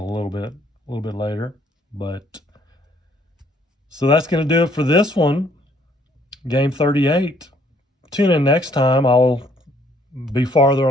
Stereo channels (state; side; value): normal; both; correlation 0.64